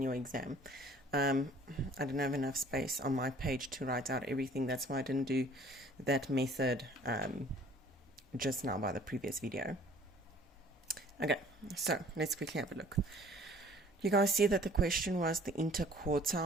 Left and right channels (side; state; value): both; normal; correlation 0.53